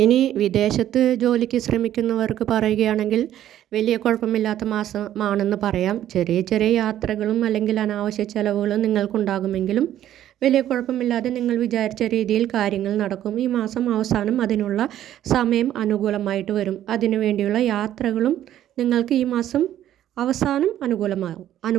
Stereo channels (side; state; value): left; quieter; 11.9 dB